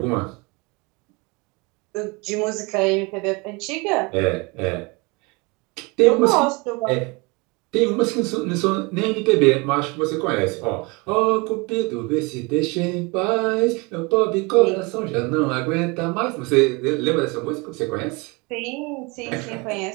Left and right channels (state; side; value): quieter; left; 27.6 dB